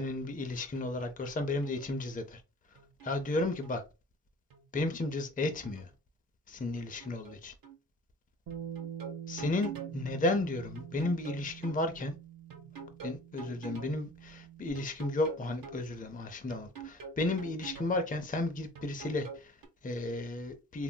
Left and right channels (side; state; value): both; normal; correlation 0.48